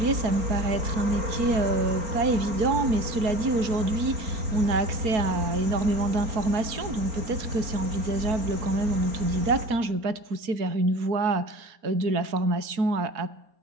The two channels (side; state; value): left; late; 4.4 ms